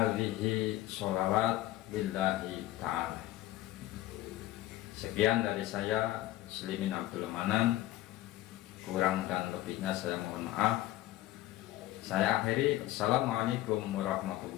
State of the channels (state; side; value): quieter; right; 15.7 dB